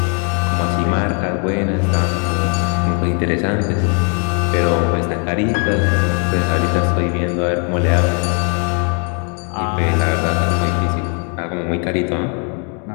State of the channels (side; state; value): right; quieter; 38.7 dB